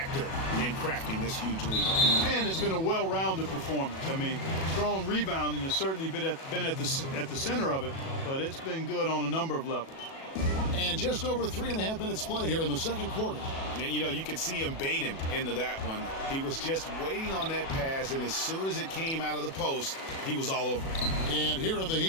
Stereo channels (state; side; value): late; right; 37 ms